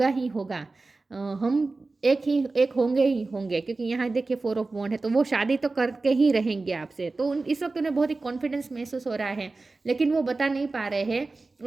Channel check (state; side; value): quieter; left; 3.5 dB